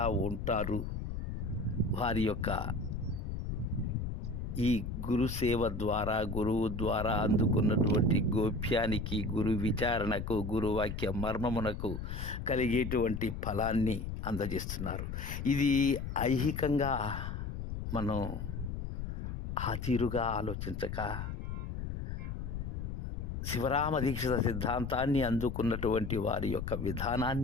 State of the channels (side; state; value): left; noise; rumble, 5 dB below the sound